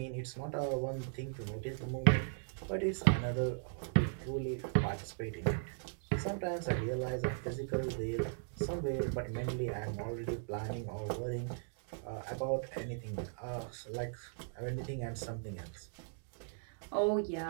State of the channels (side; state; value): left; silent; digital silence